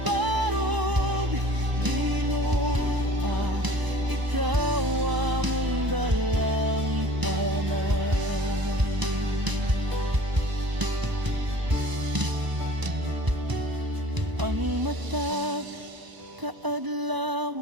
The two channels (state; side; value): late; left; 1.0 ms